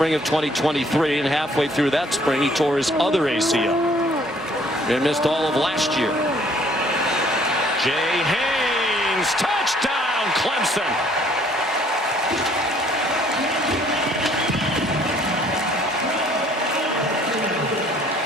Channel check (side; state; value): both; normal; correlation 0.60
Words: of 2023, and halfway through that spring, he tore his other ACL. And missed all of last year. Jay Haynes, touchdown, Clemson.